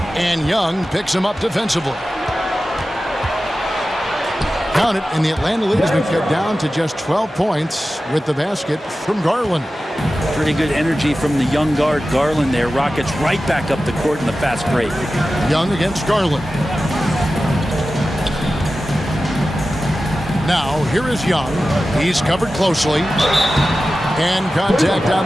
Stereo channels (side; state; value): both; normal; correlation 0.94